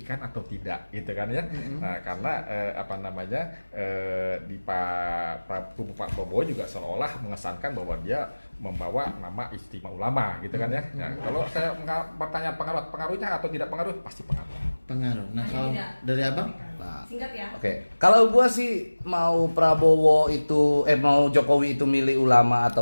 atau tidak, gitu kan ya. Nah, karena di Pak Prabowo juga seolah mengesankan bahwa dia membawa nama istimewa ulama, gitu kan ya. Nah, kalau saya bertanya pengaruhnya atau tidak pengaruh, pasti pengaruh. Nah, kalau dari abang? Singkat ya. Oke. Kalau gua sih mau Jokowi itu milih ulama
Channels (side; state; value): both; inverted; correlation -1.00